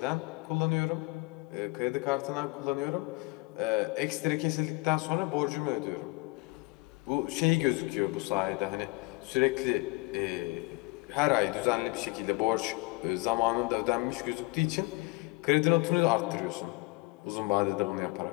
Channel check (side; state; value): right; quieter; 25.9 dB